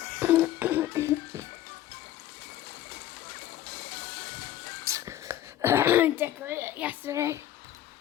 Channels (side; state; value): right; quieter; 12.9 dB